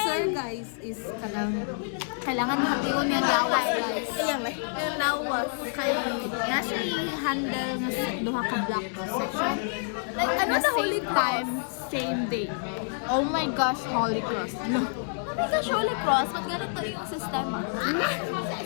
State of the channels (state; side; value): silent; right; 58 dB below the other